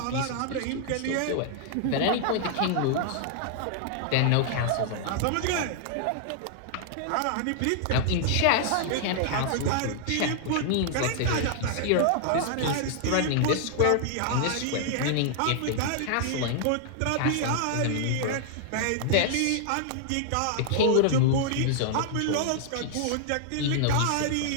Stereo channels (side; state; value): both; different; correlation -0.01